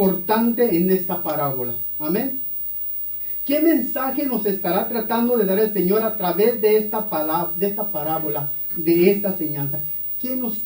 en esta parábola. Amén. ¿Qué mensaje nos estará tratando de dar el Señor a través de esta parábola, de esta enseñanza? ¿Qué nos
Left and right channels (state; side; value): identical; both; correlation 1.00